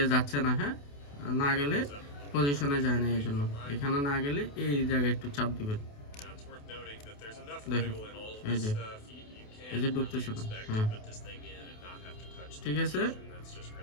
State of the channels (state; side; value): late; right; 28 ms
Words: যাচ্ছে না, হ্যাঁ না গেলে পজিশনে যায় না, এই জন্য এখানে না গেলে এই জায়গায় একটু চাপ দিবেন, দেখেন এই যে ঢুকতেছে না, হ্যাঁ ঠিক আছে?